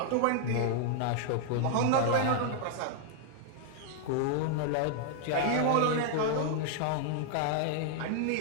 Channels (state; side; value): different; both; correlation 0.00